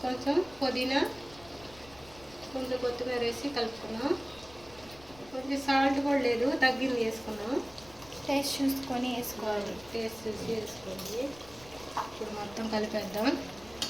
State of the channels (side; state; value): left; noise; rumble, 22 dB below the sound